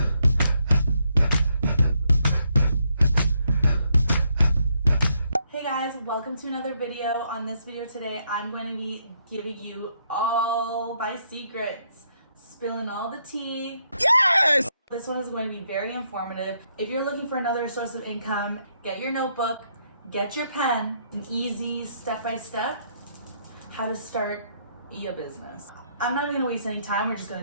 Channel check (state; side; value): inverted; both; correlation -0.75